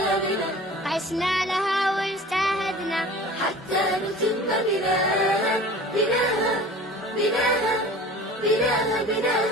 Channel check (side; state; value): both; normal; correlation 0.41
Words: عشنا لها واجتهدنا حتى نتم بناها بناها بناها بناها